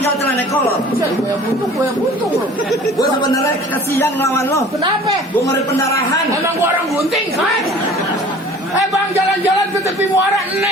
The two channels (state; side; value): normal; both; correlation 0.46